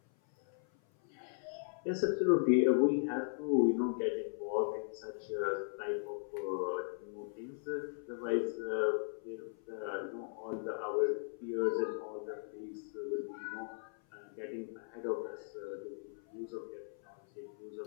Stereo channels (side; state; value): right; silent; 53 dB below the other